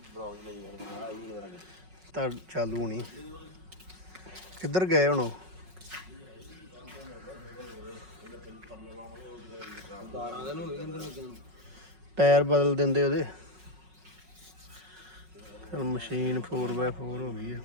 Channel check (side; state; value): left; late; 5.4 ms